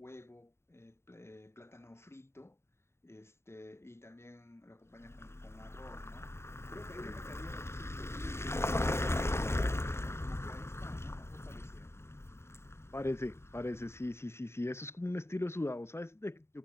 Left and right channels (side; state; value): right; late; 0.13 ms